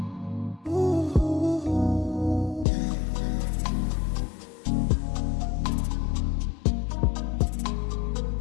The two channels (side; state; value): right; drops out; at 2.7 s